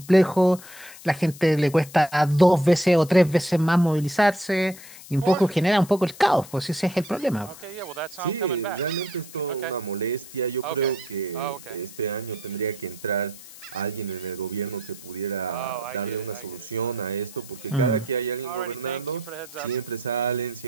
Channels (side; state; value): left; noise; hiss, 17 dB below the sound